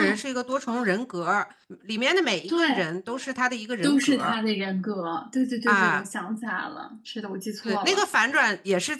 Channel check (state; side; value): identical; both; correlation 1.00